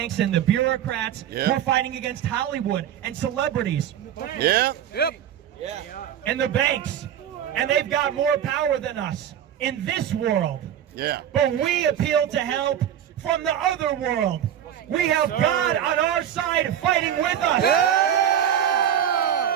and the bureaucrats. We're fighting against Hollywood and celebrities. And the banks. And they've got more power than us in this world. But we appeal to help from the other world. We have God on our side fighting with us.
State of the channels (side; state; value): left; quieter; 10.1 dB